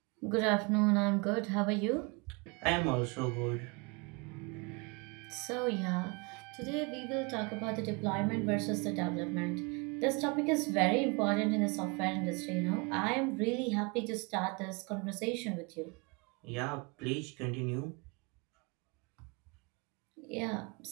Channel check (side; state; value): left; quieter; 30.1 dB